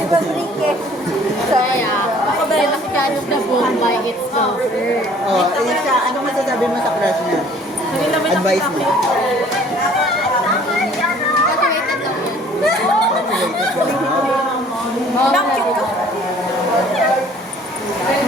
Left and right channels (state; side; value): normal; both; correlation 0.54